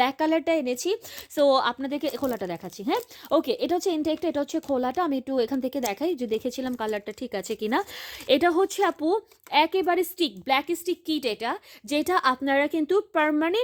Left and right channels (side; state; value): both; identical; correlation 1.00